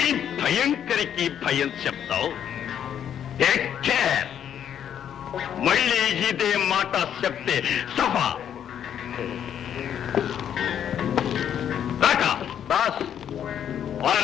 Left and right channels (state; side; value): quieter; right; 9.3 dB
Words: భయంకరికి భయం చెప్తావు. Take care. మళ్ళీ ఇదే మాట చెప్తే సభ రాకా. బాస్, ఆ